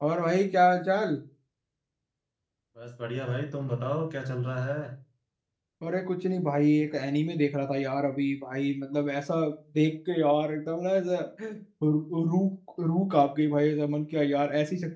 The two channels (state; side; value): identical; both; correlation 1.00